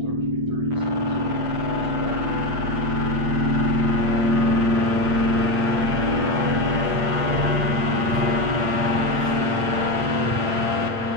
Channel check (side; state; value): left; late; 8.8 ms